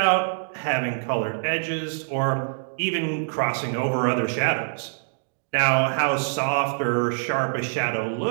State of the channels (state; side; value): silent; left; digital silence